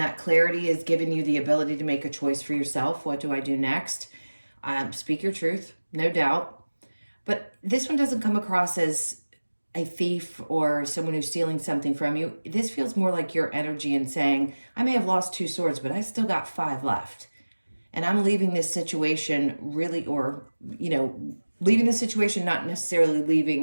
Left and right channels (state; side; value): inverted; both; correlation -1.00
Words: clarity is giving you the ability to make a choice for yourself. What do I do next? Speak your truth, no doubt. But this one doesn't come across as a thief or someone who's stealing something from you. This feels more like your energy and saying, I may have lost 2 swords, but I still got 5 left. And I'm leaving this situation really, or, leaving the situation, not necessarily